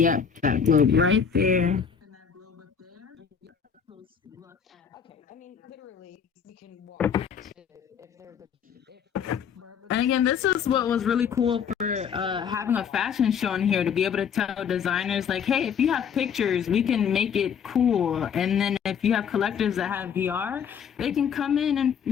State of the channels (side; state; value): right; quieter; 7.3 dB